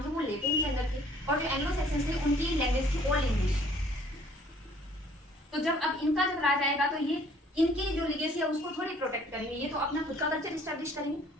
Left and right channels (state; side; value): normal; both; correlation 0.58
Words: थे वो लेटिन के अंदर थे और जो एंग्लो सैक्सन्स थे उनकी लैंग्वेज थी ओल्ड इंग्लिश। तो जब अब इनका जब राज आएगा तो ये इनकी जो लिगेसी है उसको थोड़ी प्रोटेक्ट करेंगे, ये तो अपना खुद का कल्चर स्टैब्लिश करेंगे।